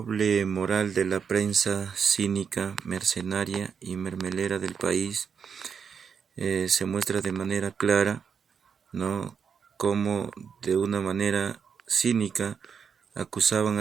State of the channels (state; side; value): quieter; left; 6.6 dB